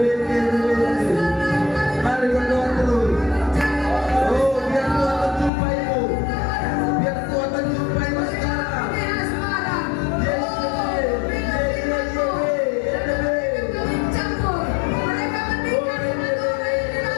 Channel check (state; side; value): drops out; right; at 5.5 s